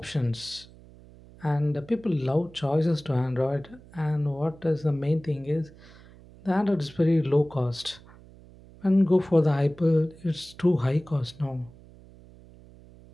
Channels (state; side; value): noise; right; hum, 22 dB below the sound